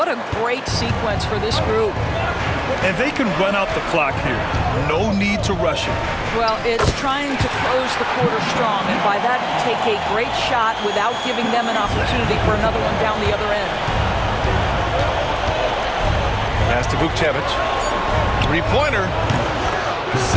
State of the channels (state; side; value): identical; both; correlation 1.00